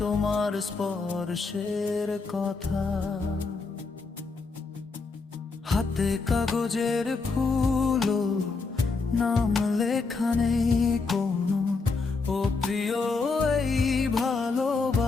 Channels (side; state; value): right; quieter; 4.2 dB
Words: তোমার স্পর্শের কথা। হাতে কাগজের ফুল, নাম লেখা নেই কোনো, ও প্রিয় এই